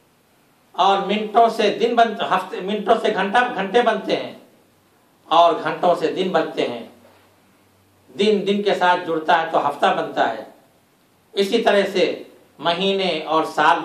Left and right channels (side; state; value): both; identical; correlation 1.00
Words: اور منٹوں سے دن بنتے، ہفتے منٹوں سے گھنٹے بنتے ہیں اور گھنٹوں سے دن بنتے ہیں، دن دن کے ساتھ جڑتا ہے تو ہفتہ بنتا ہے، اسی طرح سے مہینے اور سال